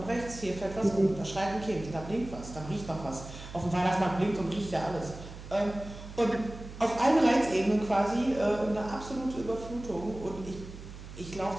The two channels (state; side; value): noise; right; hum, 13 dB below the sound